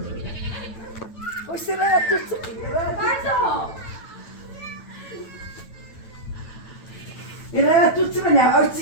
O sıraya tutsun. Pardon. Sıraya tutsun bana,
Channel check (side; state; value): right; late; 9.0 ms